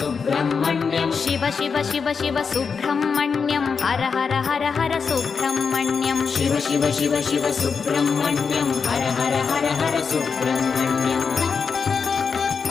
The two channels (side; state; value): right; quieter; 5.6 dB